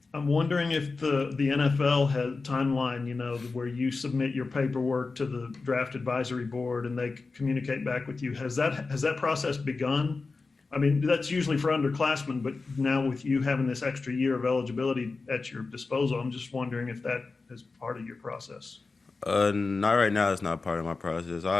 I'm wondering if the NFL has timeline, where you submit your paperwork to the draft advisory board and they communicate back with you. Has that process begun? I mean, that's usually for underclassmen, but now with you having this extra year of eligibility at your disposal, I'm just wondering if that is part of your process. Not right now. It's not part of my process.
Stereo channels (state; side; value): quieter; right; 4.0 dB